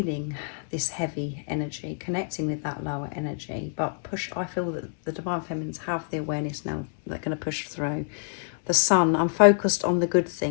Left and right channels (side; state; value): right; silent; 60 dB below the other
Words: this heavy energy, connecting with that lower energy, but I feel that the Divine Feminines have the awareness now. They're going to push through. The sun, I'm focused on the good